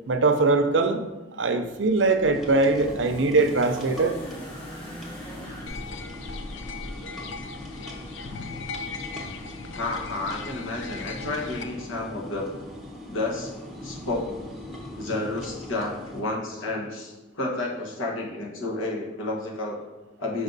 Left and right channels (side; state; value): both; normal; correlation 0.08